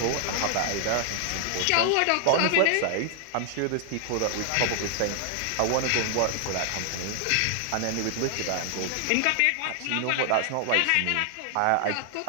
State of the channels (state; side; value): different; both; correlation 0.00